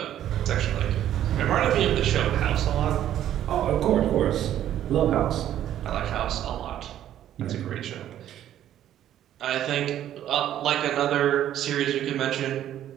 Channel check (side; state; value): left; quieter; 11.5 dB